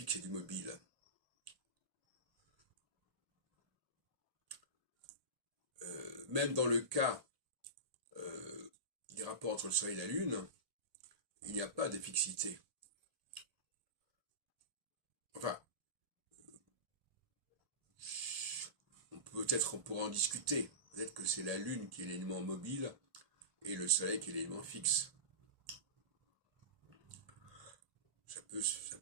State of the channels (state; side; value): late; left; 1.8 ms